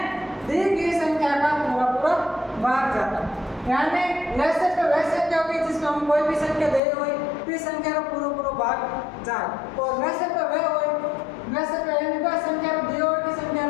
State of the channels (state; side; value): drops out; right; at 6.8 s